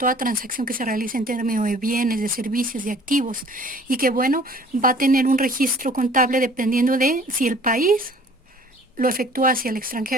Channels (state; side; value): normal; both; correlation 0.52